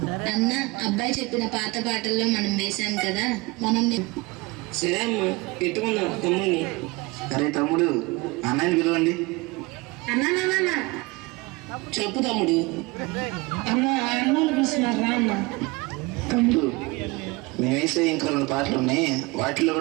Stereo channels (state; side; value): quieter; left; 24.4 dB